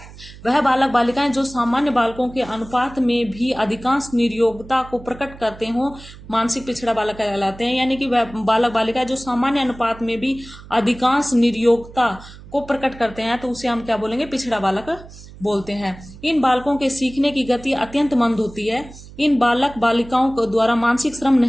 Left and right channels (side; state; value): right; noise; hum, 18 dB below the sound